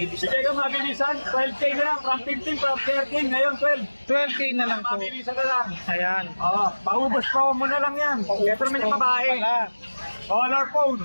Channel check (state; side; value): inverted; both; correlation -1.00